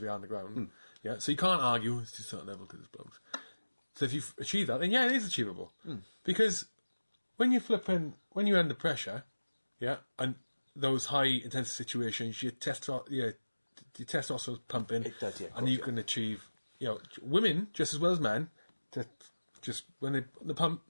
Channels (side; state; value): both; inverted; correlation -1.00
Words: we are on the ground. Yeah, so you can't argue it's just a certain level because it's blokes. So if you achieve that, then yeah, it is achievable. Because when you're under pressure, yeah, and those high intensity situations, your testosterone's pumping, it does, yeah, and you can achieve, women just as well as men. When they pump,